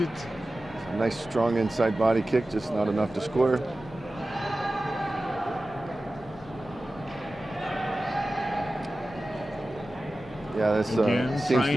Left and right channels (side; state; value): both; normal; correlation 0.95